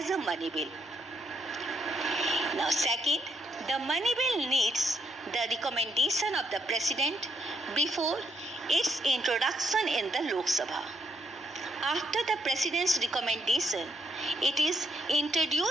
a money bill. Now, second, the money bill needs the recommendation of the President before its introduction in the Lok Sabha. After the President's recommendation, it is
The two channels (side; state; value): both; normal; correlation 0.77